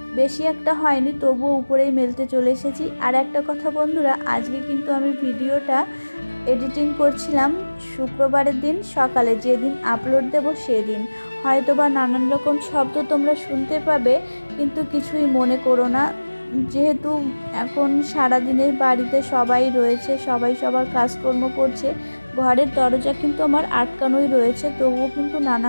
বেশি একটা হয়নি, তবুও উপরেই মেলতে চলে এসেছি। আর একটা কথা বন্ধুরা, আজকে কিন্তু আমি ভিডিওটা এডিটিং করছিলাম শুক্রবারের দিন সকালে, যেদিন আপলোড দেব সেদিন। হয়তোবা নানান রকম শব্দ তোমরা শুনতে পাবে, কিন্তু কিছুই মনে করো না। যেহেতু এখন সারাদিনের বাড়িতে সবাই রয়েছে, সবাই সবার কাজকর্ম করছে, ঘরের দরজা কিন্তু আমার আটকানোই রয়েছে, তবুও কিন্তু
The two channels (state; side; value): inverted; both; correlation -1.00